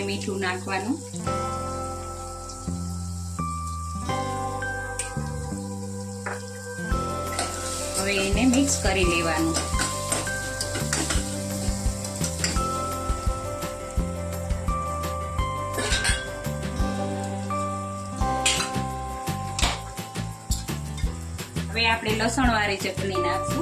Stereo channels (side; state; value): both; identical; correlation 1.00